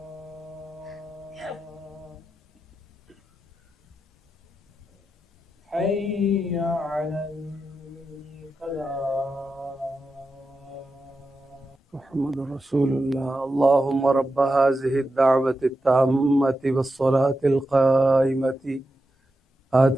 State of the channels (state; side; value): normal; both; correlation 0.89